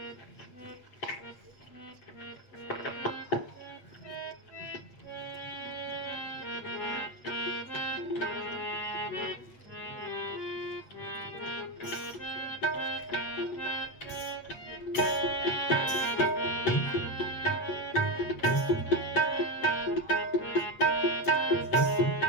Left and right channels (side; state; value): right; late; 8.3 ms